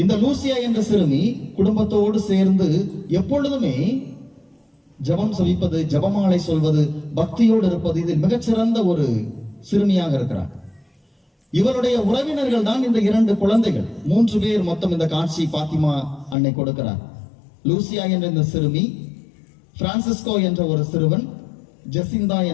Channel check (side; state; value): right; drops out; at 16.4 s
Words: லூசியா என்ற சிறுமி குடும்பத்தோடு சேர்ந்து எப்பொழுதுமே ஜபம் சொல்லிப்பது, ஜபமாலை சொல்வது, பக்தியோடு இருப்பது, இதில் மிகச்சிறந்த ஒரு சிறுமியாக இருக்கிறார். இவருடைய உறவினர்கள் தான் இந்த 2 குழந்தைகள், 3 பேர் மொத்தம் இந்த காட்சி பாத்திமா அன்னை கொடுக்கிறார். லூசியா என்ற இந்த சிறுமி, பிரான்சிஸ்கோ என்ற ஒரு சிறுவன், ஜெசிந்தா